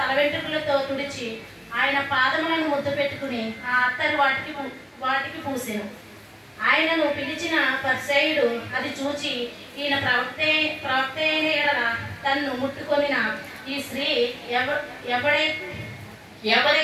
వెంట్రుకలతో తుడిచి ఆయన పాదములను ముద్దు పెట్టుకుని ఆ అత్తరు వాటికి పూసెను. ఆయనను పిలిచిన పరిసయ్యుడు అది చూచి, ఈయన ప్రవక్త అయిన ఎడల తన్ను ముట్టుకొనిన ఈ స్త్రీ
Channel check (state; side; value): identical; both; correlation 1.00